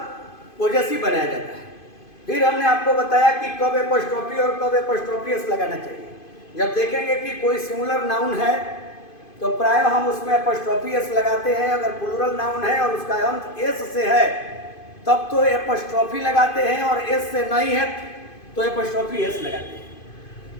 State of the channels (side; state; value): right; late; 2.5 ms